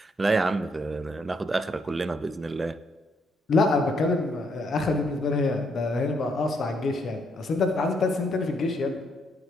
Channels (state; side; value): normal; both; correlation 0.74